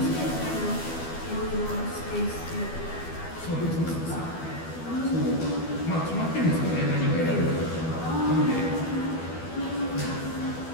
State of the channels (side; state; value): right; late; 12 ms